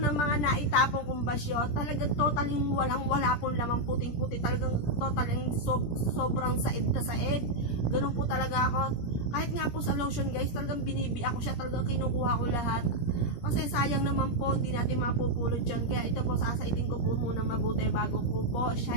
mga naitapong kong basyo, talagang totaling wala pong lamang, puting-puti. Talagang totaling sobrang said na said. Ganun po talaga ako. Kahit nga po sa lotion guys, talagang binibi ako siya. Talagang kinukuha ko lahat. Kasi sayang naman po, hindi natin mapupulot yun. Kaya ito po, sasaitin ko po muna mabuti bago ko po siya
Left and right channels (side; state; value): right; late; 17 ms